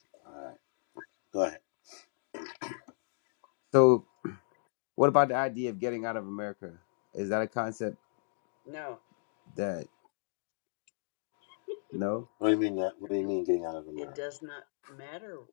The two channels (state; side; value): silent; right; digital silence